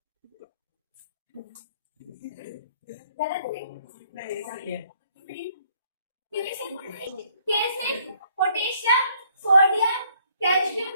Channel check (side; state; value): both; inverted; correlation -0.65